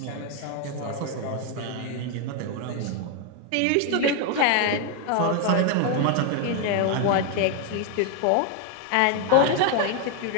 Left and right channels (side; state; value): both; different; correlation 0.00